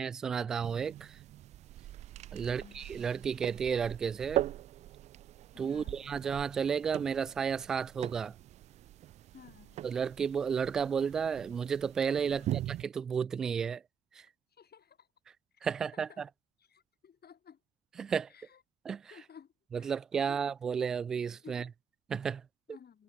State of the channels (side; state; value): left; quieter; 6.9 dB